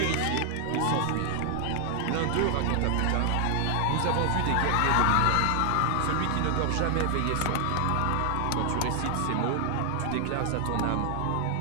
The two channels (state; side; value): different; both; correlation 0.00